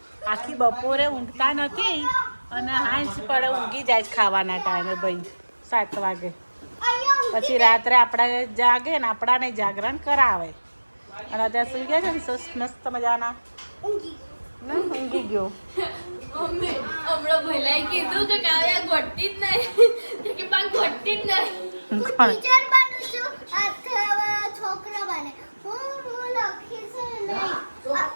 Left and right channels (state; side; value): inverted; both; correlation -1.00